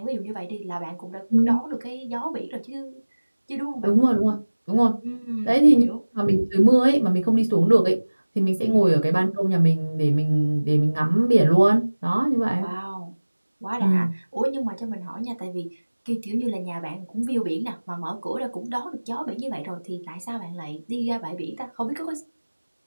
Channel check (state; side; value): inverted; both; correlation -1.00